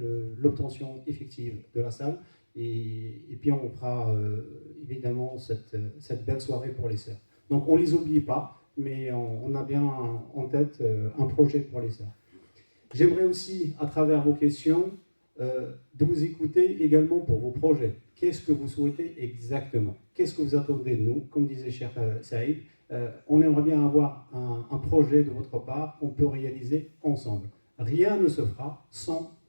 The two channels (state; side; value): inverted; both; correlation -1.00